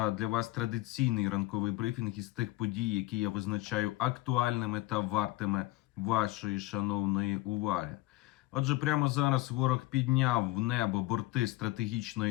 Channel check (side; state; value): right; quieter; 18.7 dB